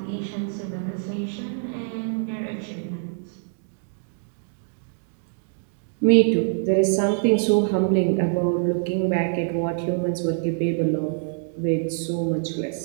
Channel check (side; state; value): left; silent; digital silence